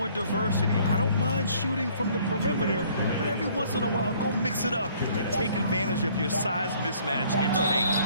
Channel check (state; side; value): inverted; both; correlation -0.59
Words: diversity. I don't mind shooting from the perimeter, but every once in a while, go mix it up and take advantage of your size mismatch in the paint.